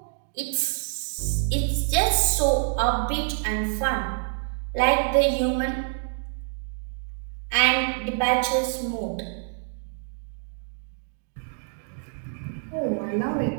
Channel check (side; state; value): left; silent; 61 dB below the other